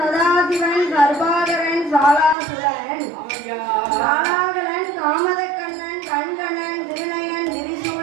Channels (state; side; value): drops out; left; at 2.4 s